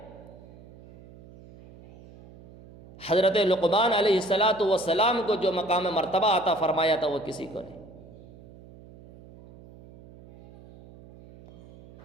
حضرت لقمان علیہ السلام کو جو مقام مرتبہ عطا فرمایا تھا وہ کسی کو نہیں۔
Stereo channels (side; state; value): right; noise; hum, 21 dB below the sound